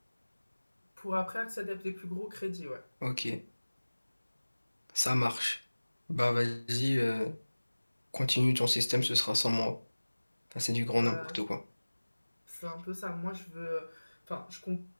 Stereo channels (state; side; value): inverted; both; correlation -1.00